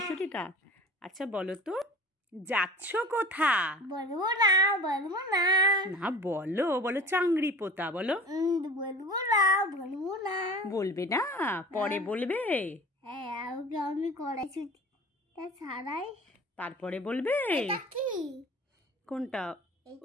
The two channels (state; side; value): normal; both; correlation 0.41